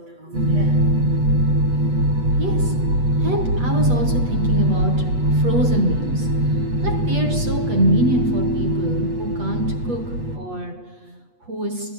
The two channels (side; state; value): left; late; 8.2 ms